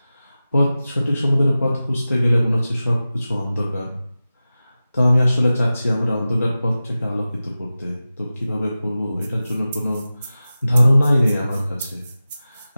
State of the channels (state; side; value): inverted; both; correlation -0.95